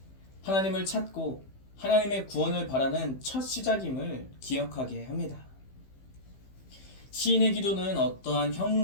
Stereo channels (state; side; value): late; right; 15 ms